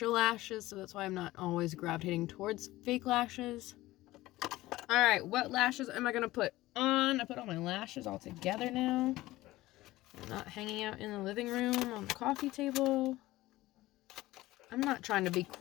lashes, so that's why I'm not always gravitating towards fake lashes. All right, what lashes am I going to put on? I put all my lashes all together now. I'm not hanging out in the living room on the coffee table. I'm not trying to be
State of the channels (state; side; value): quieter; right; 17.5 dB